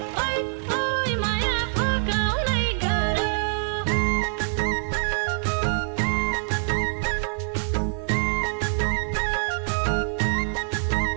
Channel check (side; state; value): left; silent; 62 dB below the other